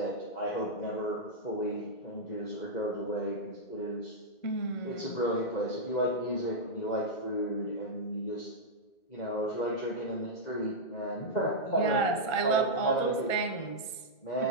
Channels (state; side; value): late; right; 2.1 ms